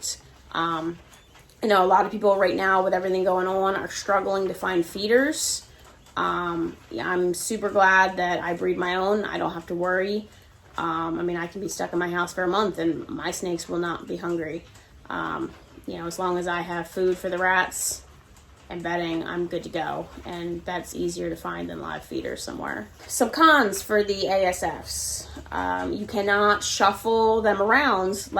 I know a lot of people right now with everything going on are struggling to find feeders. I'm super glad that I breed my own. I don't have to worry. I can be stuck in my house for a month and my snakes will not be hungry. As long as I have food for the rats and bedding, I'm good to go. And that's easier to find than live feeders somewhere. Some cons for the ASFs. You cannot shuffle them around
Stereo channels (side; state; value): both; identical; correlation 1.00